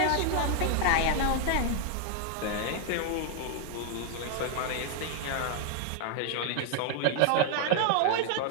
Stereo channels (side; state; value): both; different; correlation 0.00